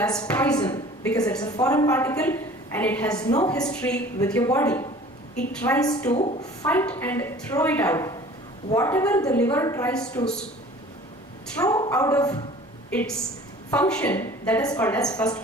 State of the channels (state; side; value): normal; both; correlation 0.46